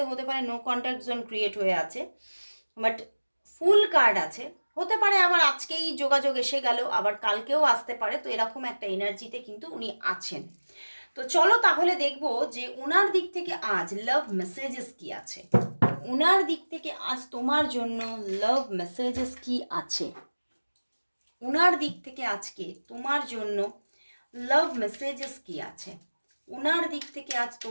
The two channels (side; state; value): both; inverted; correlation -1.00